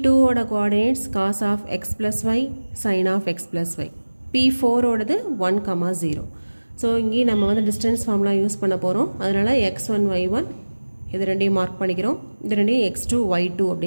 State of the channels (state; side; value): inverted; both; correlation -1.00